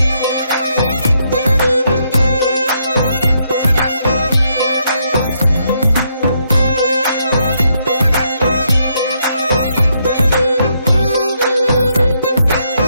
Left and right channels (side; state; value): both; inverted; correlation -0.77